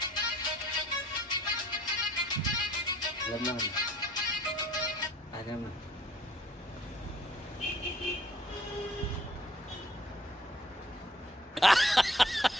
Lemon. Ada mah.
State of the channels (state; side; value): normal; both; correlation 0.58